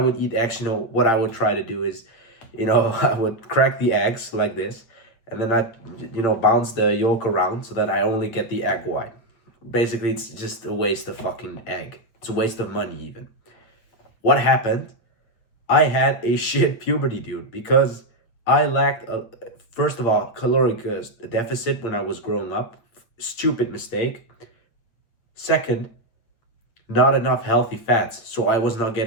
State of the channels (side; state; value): right; late; 8.9 ms